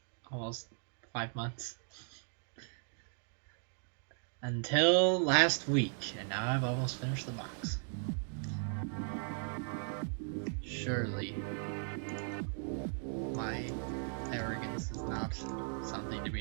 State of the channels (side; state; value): left; silent; 53 dB below the other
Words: almost 5 months. Until last week, and now I've almost finished the box. Surely my arrogance is not something to